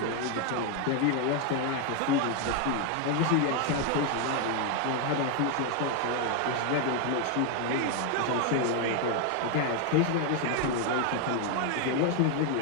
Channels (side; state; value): both; different; correlation 0.01